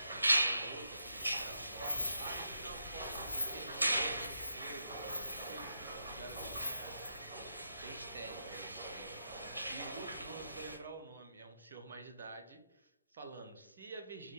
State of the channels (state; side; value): inverted; both; correlation -0.81